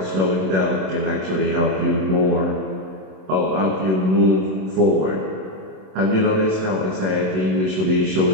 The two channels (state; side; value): late; left; 27 ms